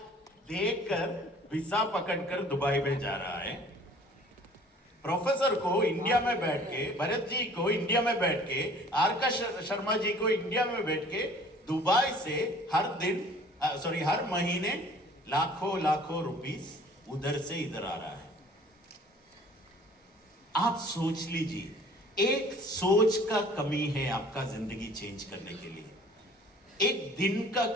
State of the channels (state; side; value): normal; both; correlation 0.51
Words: देकर वीसा पकड़कर दुबई में जा रहा है। प्रोफेसर को इंडिया में बैठ के, भरत जी को इंडिया में बैठ के, आर.के. शर्मा जी को इंडिया में बैठ के दुबई से हर महीने लाखों रुपीस उधर से इधर आ रहा है। आप सोच लीजिए, एक सोच का कमी है आपका जिंदगी चेंज करने के लिए, एक दिन का